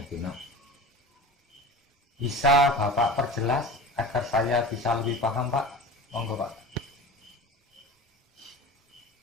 itu nah. Bisa Bapak perjelas agar saya bisa lebih paham Pak? Monggo Pak.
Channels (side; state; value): both; normal; correlation 0.35